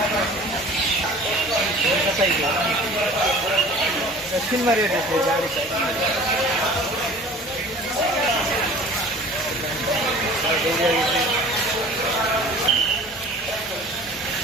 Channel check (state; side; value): normal; both; correlation 0.45